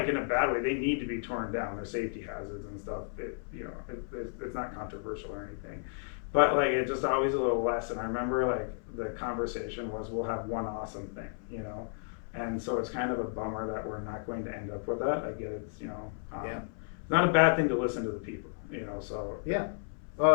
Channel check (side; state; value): right; silent; 56 dB below the other